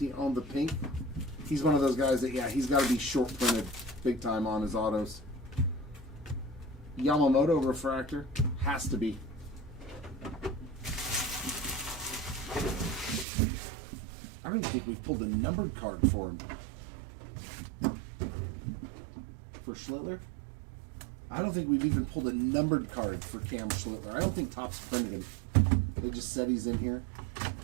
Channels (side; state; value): left; drops out; at 13.2 s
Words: on the pink. He's one of those guys that, yeah, he's got to be short printed big time on his autos. Yamamoto refractor. Has to be. I don't even think we've pulled a numbered card for him. For Schlittler? I don't think we've even pulled a numbered card for Cam Schlittler. I don't think Topps printed him. They just said he's in here.